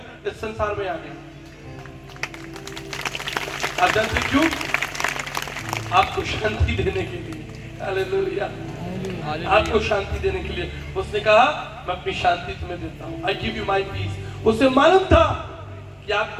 इस संसार में आ गए। आप जानते क्यों? आपको शांति देने के लिए। हालेलुया, आपको शांति देने के लिए उसने कहा मैं अपनी शांति तुम्हें देता हूं, I give you my peace. उसे मालूम था कि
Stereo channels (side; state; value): both; identical; correlation 1.00